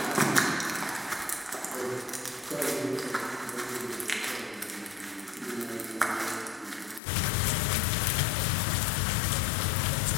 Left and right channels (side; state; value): right; drops out; at 7.0 s